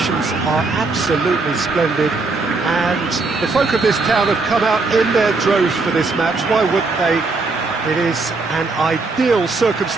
are absolutely splendid and the folk of this town have come out in their droves for this match. Why wouldn't they? It is an ideal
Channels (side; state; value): left; quieter; 3.8 dB